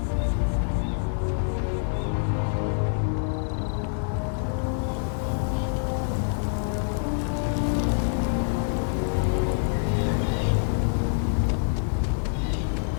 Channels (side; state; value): right; silent; digital silence